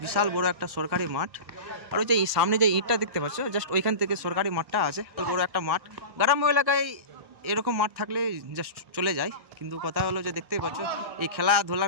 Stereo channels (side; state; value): left; late; 1.0 ms